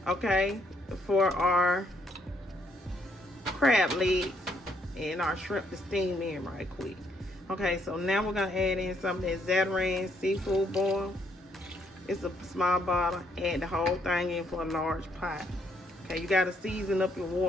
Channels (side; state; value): both; normal; correlation 0.71